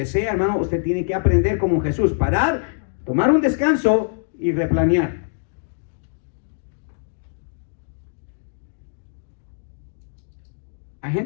sea, hermano, usted tiene que aprender como Jesús, parar, tomar un descanso y replanear. Hay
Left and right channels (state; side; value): silent; right; digital silence